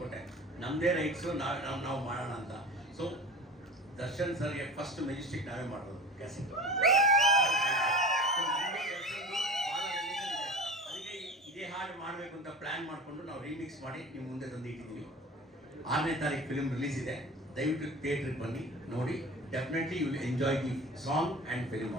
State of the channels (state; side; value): normal; both; correlation 0.36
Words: ನಮ್ದೇ ರೈಟ್ಸು, ನಾವು ಮಾಡೋಣ ಅಂತ. ಸೊ ದರ್ಶನ್ ಸರ್ಗೆ ಫಸ್ಟ್ ಮೆಜೆಸ್ಟಿಕ್ ನಾವೇ ಮಾಡೋದು ಕ್ಯಾಸೆಟ್. ಪ್ಲಾನ್ ಮಾಡಿಕೊಂಡು ನಾವು ರೀಮಿಕ್ಸ್ ಮಾಡಿ ನಿಮ್ಮ ಮುಂದೆ ತಂದು ಇಟ್ಟಿದ್ದೀವಿ. 6ನೇ ತಾರೀಕು ಫಿಲ್ಮ್ ರಿಲೀಸ್ ಇದೆ. ದಯವಿಟ್ಟು ಥಿಯೇಟ್ರಿಗೆ ಬನ್ನಿ, ನೋಡಿ. Definitely you will enjoy the song and film